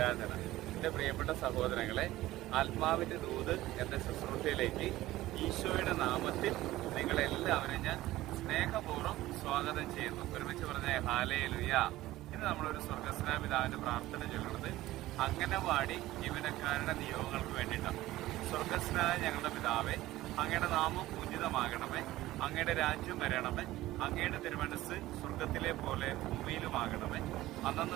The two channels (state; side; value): quieter; left; 16.4 dB